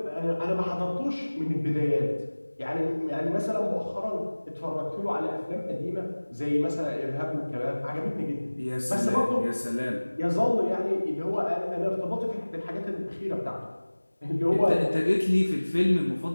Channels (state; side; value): inverted; both; correlation -1.00